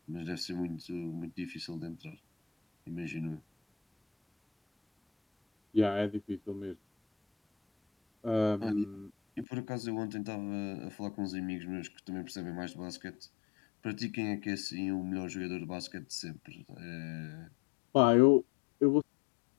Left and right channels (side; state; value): right; drops out; at 9.5 s